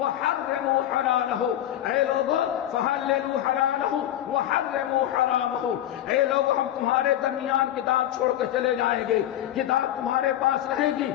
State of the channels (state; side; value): quieter; right; 12.4 dB